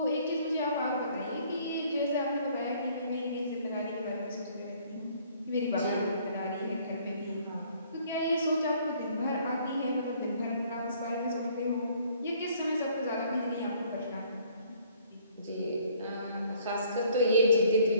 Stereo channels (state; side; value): inverted; both; correlation -0.60